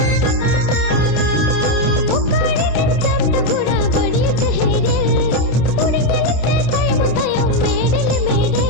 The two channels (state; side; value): late; right; 28 ms